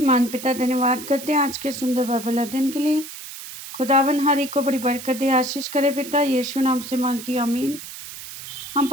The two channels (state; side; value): noise; right; hiss, 12 dB below the sound